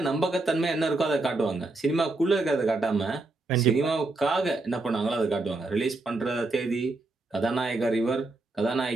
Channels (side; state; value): left; quieter; 3.1 dB